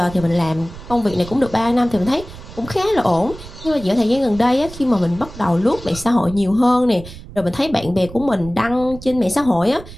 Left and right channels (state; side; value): noise; right; rumble, 15 dB below the sound